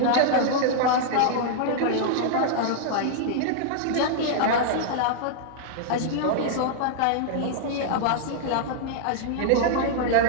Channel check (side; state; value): both; different; correlation -0.01